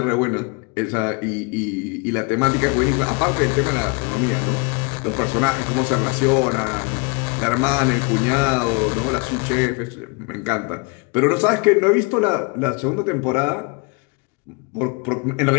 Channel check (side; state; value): right; quieter; 31.8 dB